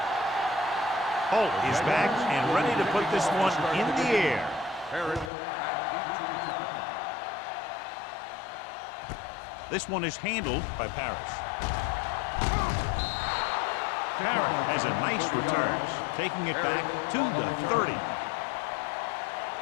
Holt is back and ready to put this one in the air. This one is handled by Parrish. Parrish has a nice return, taking it back to the 30.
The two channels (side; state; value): right; drops out; at 5.3 s